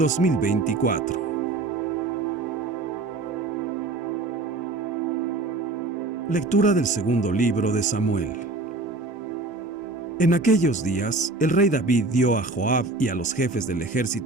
Lectura del segundo libro de Samuel. En aquellos días, el rey David dio a Joab y a los jefes del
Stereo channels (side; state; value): left; quieter; 3.3 dB